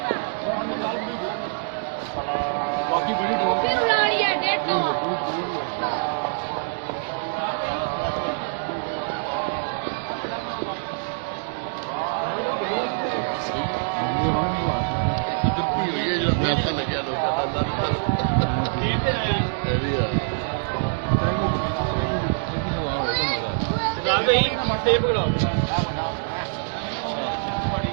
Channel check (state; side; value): silent; left; digital silence